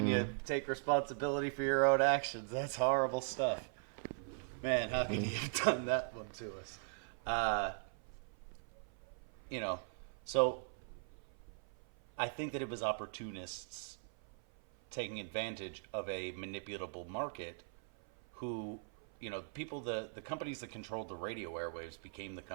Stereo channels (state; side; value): silent; left; 51 dB below the other